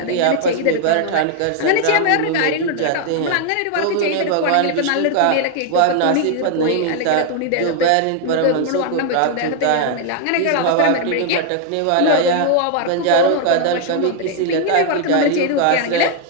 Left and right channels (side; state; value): both; different; correlation 0.00